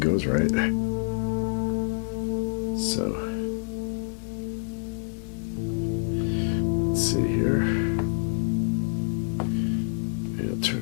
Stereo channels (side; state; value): right; silent; digital silence